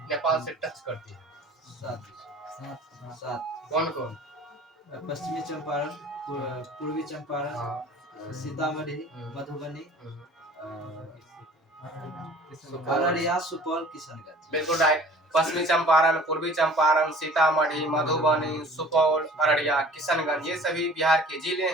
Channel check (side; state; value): both; normal; correlation 0.47